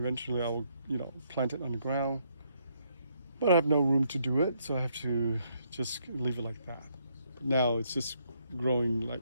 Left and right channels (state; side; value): inverted; both; correlation -0.73